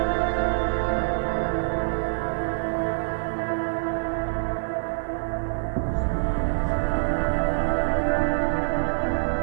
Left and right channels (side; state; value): left; silent; 55 dB below the other